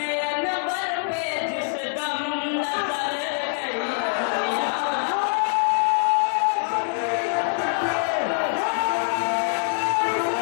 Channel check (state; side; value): silent; right; 62 dB below the other